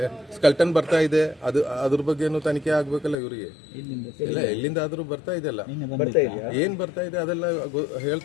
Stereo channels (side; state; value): right; drops out; at 3.2 s